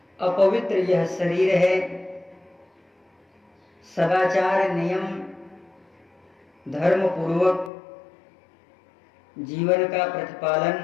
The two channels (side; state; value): right; drops out; at 7.7 s